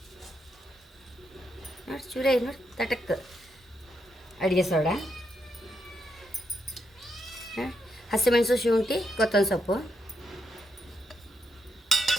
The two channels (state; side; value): normal; both; correlation 0.81